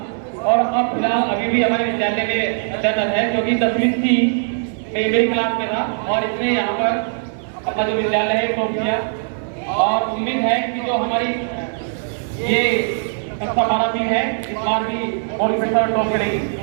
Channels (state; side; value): silent; left; 66 dB below the other